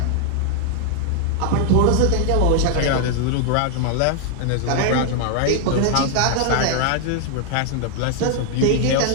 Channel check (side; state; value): both; different; correlation 0.00